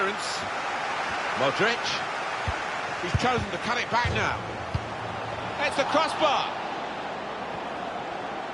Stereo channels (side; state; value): both; identical; correlation 1.00